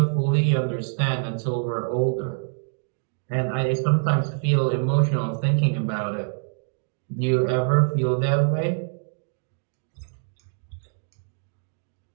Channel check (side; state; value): left; silent; digital silence